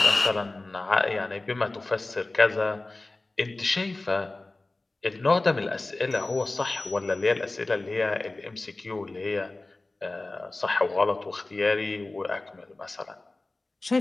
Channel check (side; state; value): right; quieter; 3.0 dB